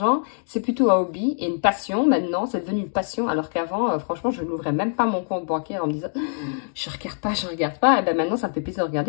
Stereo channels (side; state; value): right; silent; digital silence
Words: C'est plutôt un hobby et une passion. Maintenant, c'est devenu une passion. Alors qu'avant, franchement, je n'ouvrais même pas mon compte bancaire en me disant « je regarde pas ». Et bien maintenant, ça me fait plaisir de